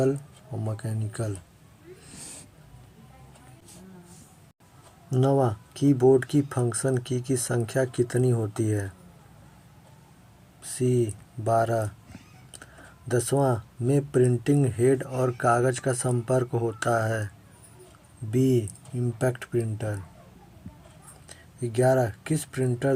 और मैकेनिकल। नौवां, कीबोर्ड की फंक्शन की संख्या कितनी होती है? सी 12। 10वां, में प्रिंटिंग हेड और कागज का संपर्क होता है। B impact printer. 11, किस प्रिंटर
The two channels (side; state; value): both; identical; correlation 1.00